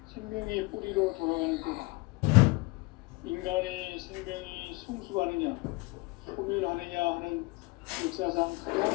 생명의 뿌리로 돌아가는 때다. 인간의 생명이 성숙하느냐, 소멸하느냐 하는 역사상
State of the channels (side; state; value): right; quieter; 25.3 dB